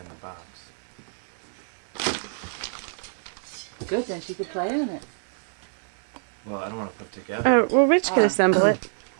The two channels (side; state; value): left; silent; digital silence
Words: the box. Good, then she could play in it. Well, I don't want to put together. Oh, well, Rich can assemble it.